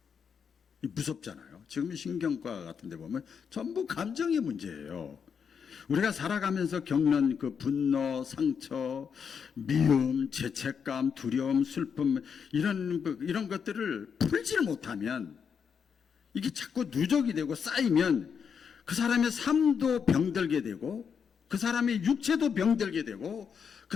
무섭잖아요. 지금 신경과 같은 데 보면 전부 감정의 문제예요. 우리가 살아가면서 겪는 그 분노, 상처, 미움, 죄책감, 두려움, 슬픔 이런 것들을 풀지를 못하면 이게 자꾸 누적이 되고 쌓이면 그 사람의 삶도 병들게 되고 그 사람의 육체도 병들게 되고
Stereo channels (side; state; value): right; quieter; 6.8 dB